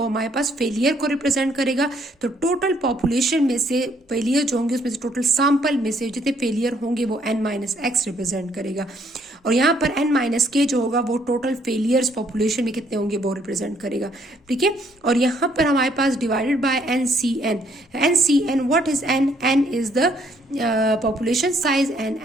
हमारे पास फेलियर को रिप्रेजेंट करेगा। तो टोटल पॉपुलेशन में से फेलियर जो होंगे उसमें से टोटल सैंपल में से जितने फेलियर होंगे वो n माइनस एक्स रिप्रेजेंट करेगा। और यहाँ पर n माइनस के जो होगा वो टोटल फेलियर्स पॉपुलेशन में कितने होंगे वो रिप्रेजेंट करेगा, ठीक है। और यहाँ पर हमारे पास divided by NCN what is n is the population size and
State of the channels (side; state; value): both; normal; correlation 0.67